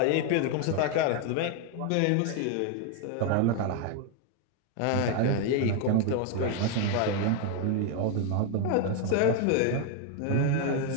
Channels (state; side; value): different; both; correlation 0.01